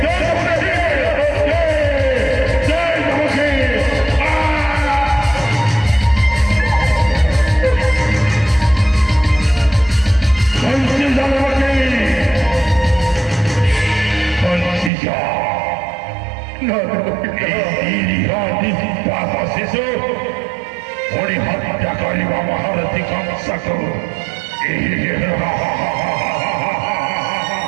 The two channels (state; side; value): drops out; left; at 14.9 s